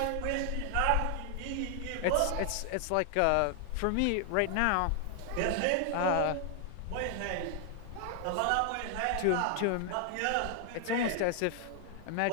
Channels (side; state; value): both; different; correlation 0.00